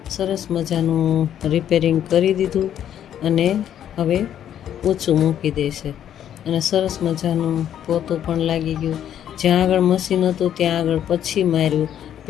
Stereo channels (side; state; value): right; quieter; 10.2 dB